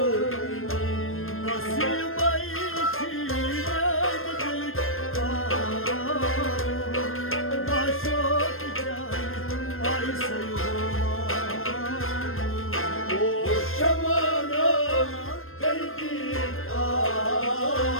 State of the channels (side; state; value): right; late; 0.60 ms